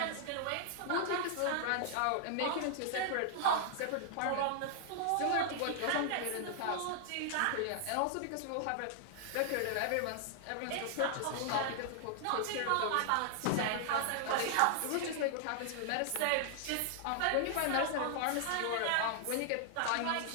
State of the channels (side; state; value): both; different; correlation -0.01